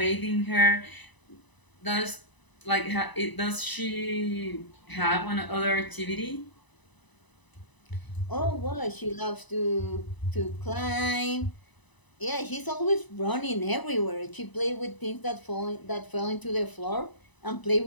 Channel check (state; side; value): late; right; 1.0 ms